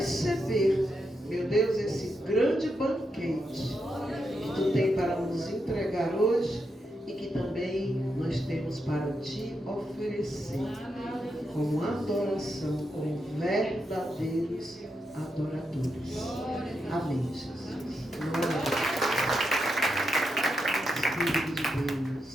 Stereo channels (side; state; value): both; normal; correlation 0.84